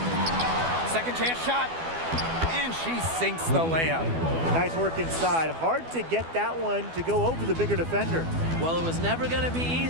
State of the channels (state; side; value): late; left; 12 ms